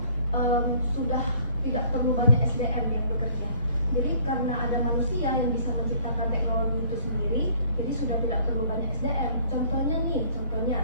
sudah tidak perlu banyak SDM yang bekerja. Jadi karena ada manusia yang bisa menciptakan teknologi itu sendiri, jadi sudah tidak perlu banyak SDM. Contohnya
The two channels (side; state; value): both; inverted; correlation -0.56